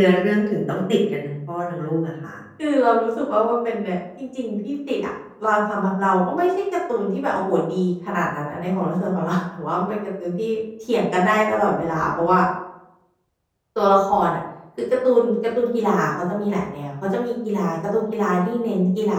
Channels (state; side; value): identical; both; correlation 1.00